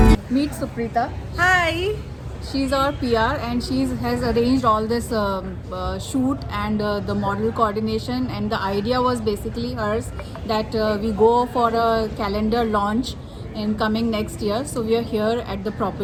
Meet Suprita. Hi. She's our PR, and she has arranged all this shoot and the model coordination. And the idea was basically hers that we go for a calendar launch in coming next year. So we are here at the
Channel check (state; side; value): identical; both; correlation 1.00